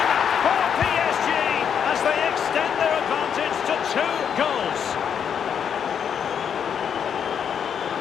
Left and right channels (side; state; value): right; quieter; 7.8 dB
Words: for PSG as they extend their advantage to 2 goals.